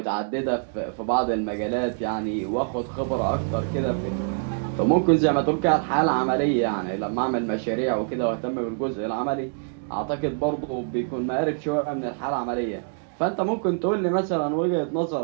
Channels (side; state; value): left; silent; 61 dB below the other